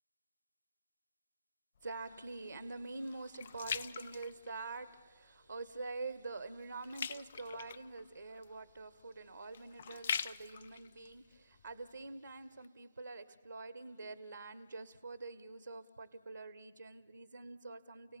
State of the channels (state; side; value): inverted; both; correlation -0.77